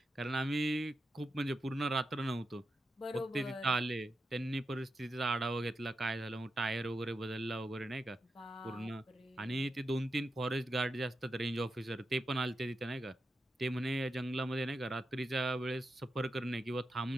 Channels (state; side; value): normal; both; correlation 0.88